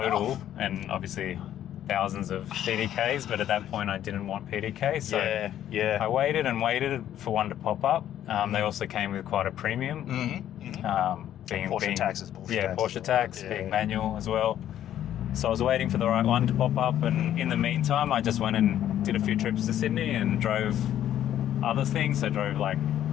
enough. and obviously thousands of PDKs, but at that point I didn't want PDK, so I waited and waited for one to pop up. They also came with quite a premium, being Porsche taxes. Porsche tax, being manual as well. So I was waiting for the right one to pop up, and in the meantime I just went and did a few trips to Sydney and drove other things. I drove like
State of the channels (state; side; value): quieter; right; 11.3 dB